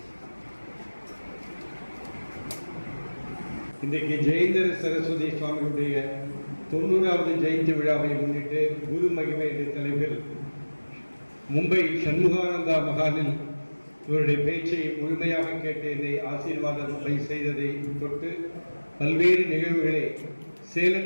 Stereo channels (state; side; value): inverted; both; correlation -1.00